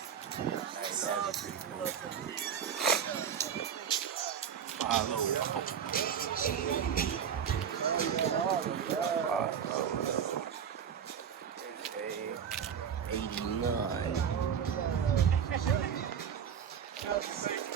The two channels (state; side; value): quieter; left; 7.9 dB